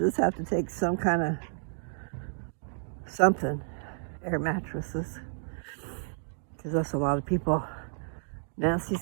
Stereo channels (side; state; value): left; silent; digital silence